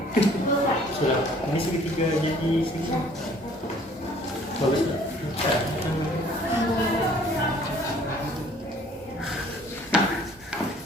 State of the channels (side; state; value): both; normal; correlation 0.56